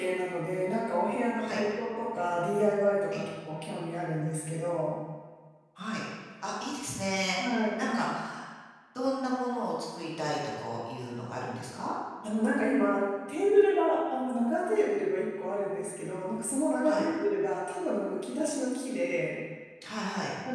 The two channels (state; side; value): identical; both; correlation 1.00